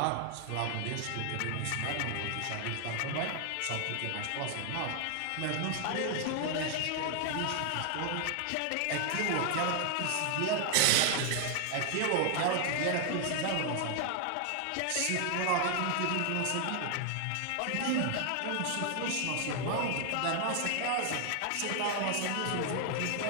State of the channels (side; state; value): both; different; correlation 0.00